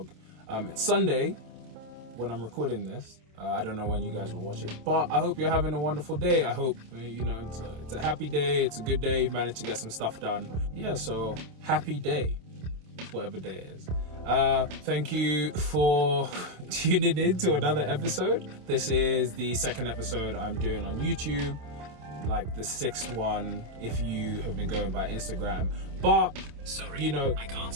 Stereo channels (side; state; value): left; late; 27 ms